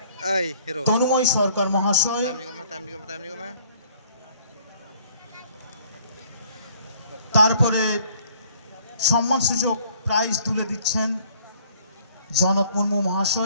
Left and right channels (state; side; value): inverted; both; correlation -0.58